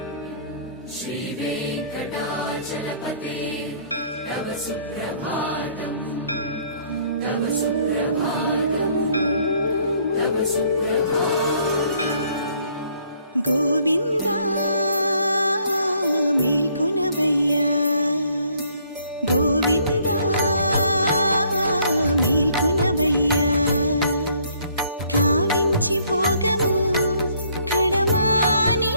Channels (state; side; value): inverted; both; correlation -0.63